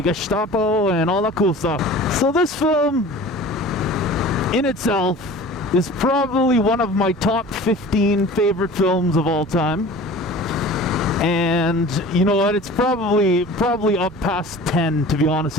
and all that cool stuff. So this film in itself is probably one of my top 15 favorite films of all time. And you know what? It's probably up past 10, to be honest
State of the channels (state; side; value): normal; both; correlation 0.41